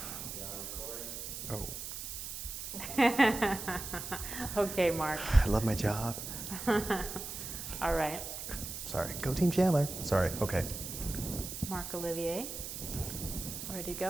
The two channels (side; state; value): right; noise; hiss, 7 dB below the sound